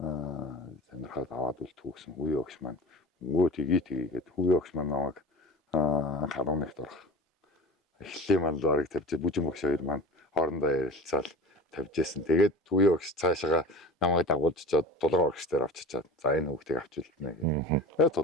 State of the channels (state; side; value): normal; both; correlation 0.35